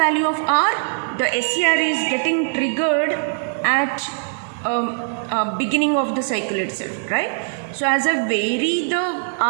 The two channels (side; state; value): left; silent; digital silence